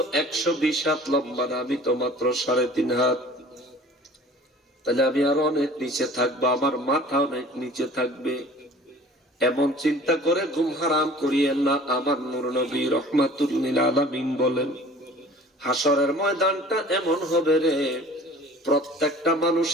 120 হাত লম্বা না, আমি তো মাত্র 3.5 হাত। তাহলে আমি আরো অনেক নিচে থাকবো, আমার মাথা অনেক নিচে থাকবে। এমন চিন্তা করে ঘুম হারাম করিয়েন না। আমার নূর নবী রাহমাতুল লিল আলামিন বলেন, হাসরের ময়দানটা এমন হবে রে, প্রত্যেকটা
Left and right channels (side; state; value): both; normal; correlation 0.46